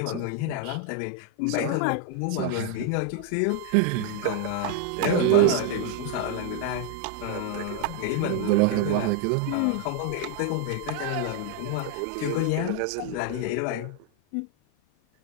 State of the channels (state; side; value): different; both; correlation 0.00